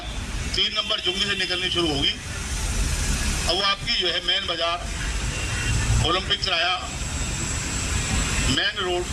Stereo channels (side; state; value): both; identical; correlation 1.00